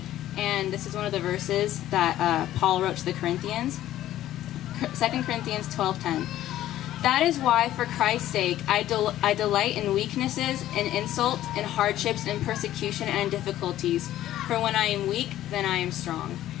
and this is one of the verses that Paul wrote to the Corinthians. 2 Corinthians 12:10. That is why, for Christ's sake, I delight in weaknesses, in insults, in hardships, in persecution, and in difficulties. For when I am weak, then I am strong.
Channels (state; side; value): quieter; right; 13.4 dB